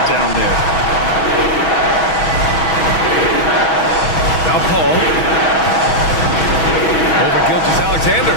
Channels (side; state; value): right; late; 6.2 ms